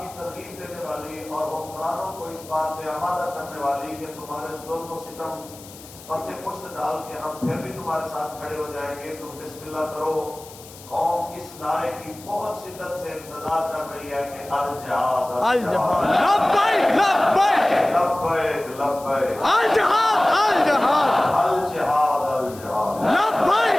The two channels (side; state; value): left; noise; hiss, 19 dB below the sound